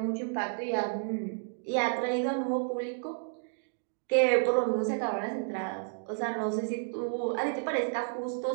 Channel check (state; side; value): silent; left; 57 dB below the other